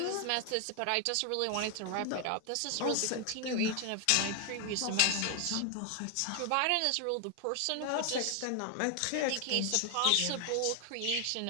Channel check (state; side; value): different; both; correlation 0.00